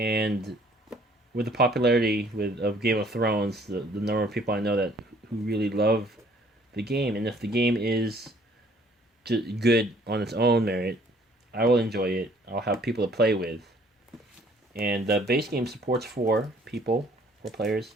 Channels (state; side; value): normal; both; correlation 0.59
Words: with the popularity of Game of Thrones, the number of people I know that who really love the game, and if the game is good on its own merit, I will enjoy it. I'll have people to play with, and the base game supports four players,